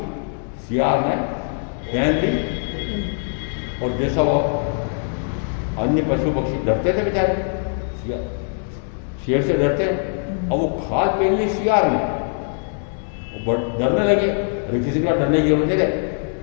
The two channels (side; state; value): right; silent; 60 dB below the other